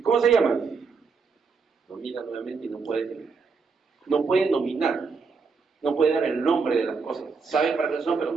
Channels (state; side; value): quieter; left; 4.9 dB